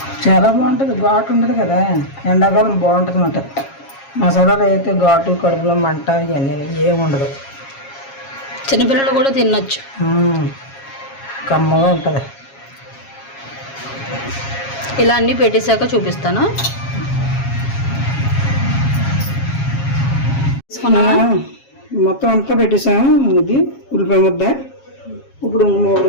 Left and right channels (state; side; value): late; right; 7.3 ms